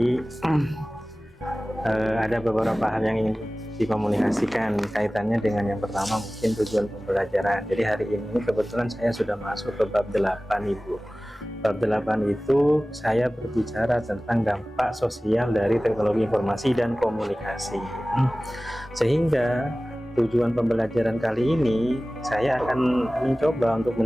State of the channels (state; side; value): normal; both; correlation 0.97